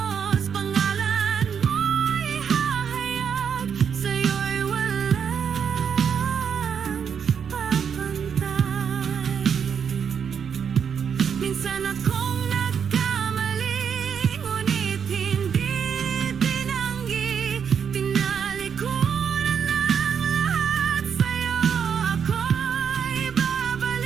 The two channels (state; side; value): quieter; left; 7.3 dB